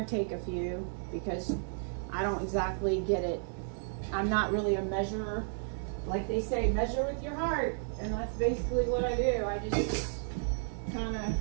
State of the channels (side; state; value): left; silent; digital silence